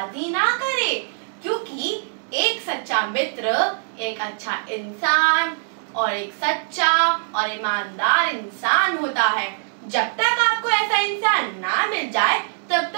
ना करें, क्योंकि एक सच्चा मित्र एक अच्छा इंसान और एक सच्चा और ईमानदार इंसान होता है। जब तक आपको ऐसा इंसान ना मिल जाए तब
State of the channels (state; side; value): silent; left; digital silence